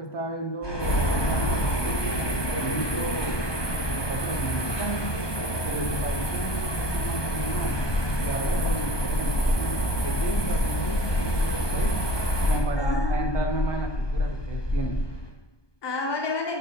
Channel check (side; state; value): right; late; 1.2 ms